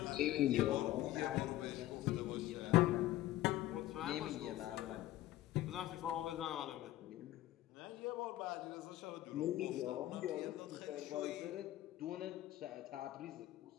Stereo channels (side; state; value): right; quieter; 14.9 dB